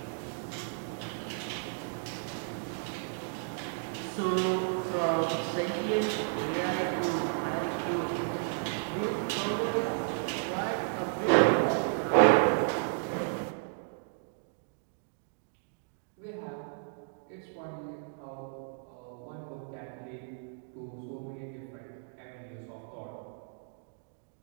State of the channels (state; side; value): silent; left; digital silence